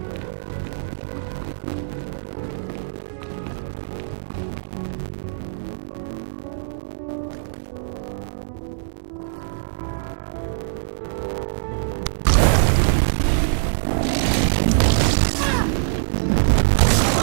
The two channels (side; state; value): left; silent; digital silence